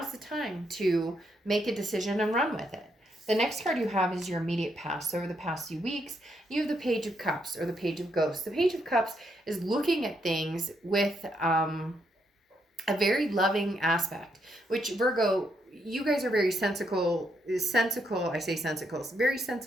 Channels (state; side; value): normal; both; correlation 0.77